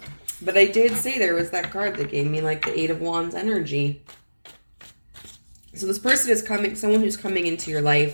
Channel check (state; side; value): inverted; both; correlation -1.00